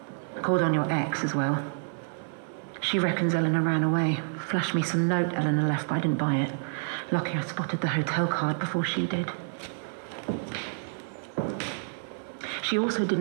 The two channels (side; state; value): left; silent; 59 dB below the other